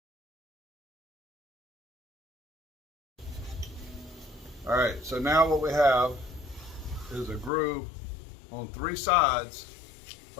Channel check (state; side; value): drops out; right; at 7.5 s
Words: All right, so now what we have is a groove on three sides